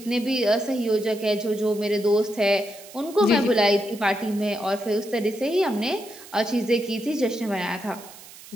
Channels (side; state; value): right; noise; hiss, 18 dB below the sound